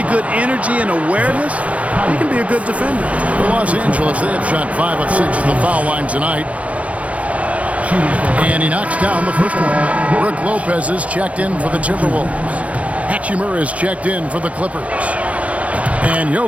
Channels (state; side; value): late; left; 0.065 ms